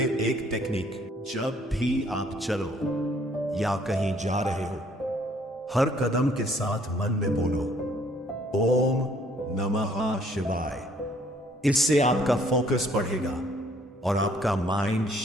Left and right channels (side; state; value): both; normal; correlation 0.62